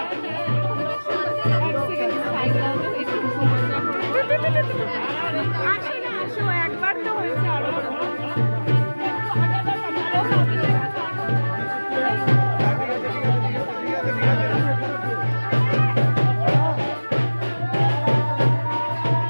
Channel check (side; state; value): both; inverted; correlation -1.00